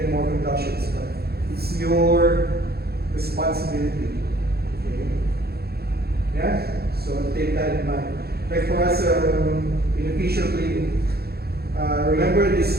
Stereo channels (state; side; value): late; left; 0.46 ms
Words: more conductions, but it's your responsibility. Okay? Yeah? So take that in mind. Like for us in a facial clinic, remember